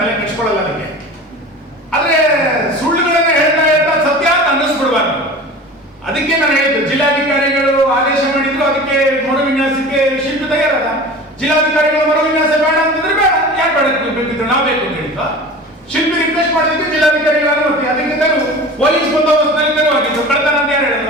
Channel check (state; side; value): normal; both; correlation 0.37